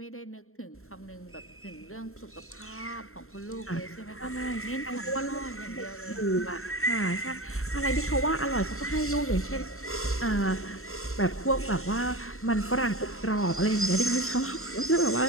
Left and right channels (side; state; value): right; late; 0.62 ms